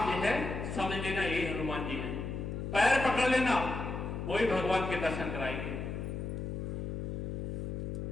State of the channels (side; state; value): left; noise; hum, 4 dB below the sound